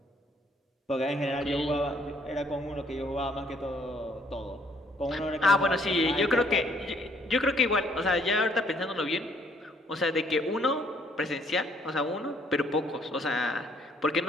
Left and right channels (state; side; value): normal; both; correlation 0.64